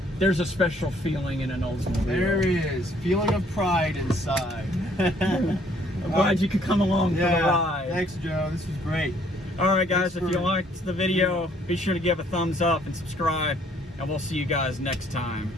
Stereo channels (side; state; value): both; normal; correlation 0.63